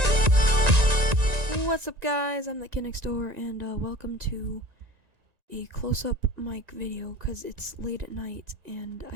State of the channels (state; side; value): late; left; 1.9 ms